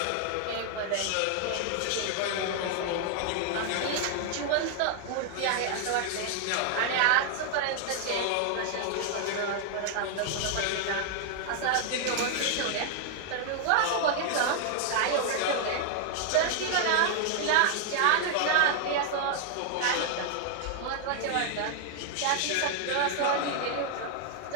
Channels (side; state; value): both; different; correlation 0.00